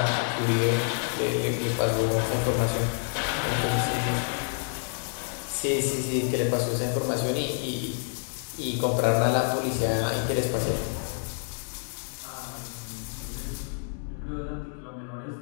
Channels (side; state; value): right; silent; 56 dB below the other